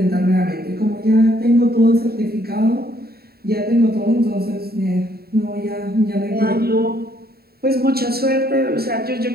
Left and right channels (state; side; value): late; left; 0.45 ms